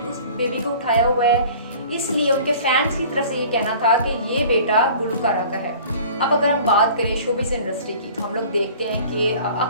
उस बेबी को उठाया हुआ है, इसलिए उनके फैंस की तरफ से ये कहना था कि ये बेटा गुलूकारा का है। अब अगर हम बात करें शोबिज़ इंडस्ट्री की, तो हम लोग देखते हैं कि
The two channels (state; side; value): inverted; both; correlation -0.46